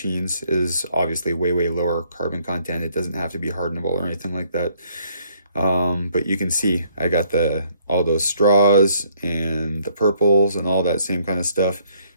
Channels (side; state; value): both; inverted; correlation -0.66